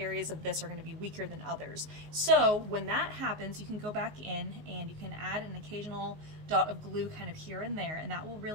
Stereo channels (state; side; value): late; left; 19 ms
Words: of this are going to be weaker than others. So when that happens, you can go back in and you can add an occasional dot of glue kind of here and there, and that will